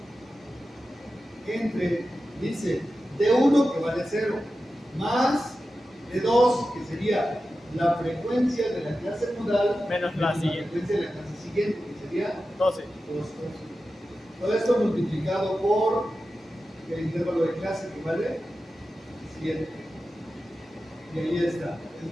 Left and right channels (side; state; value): both; normal; correlation 0.93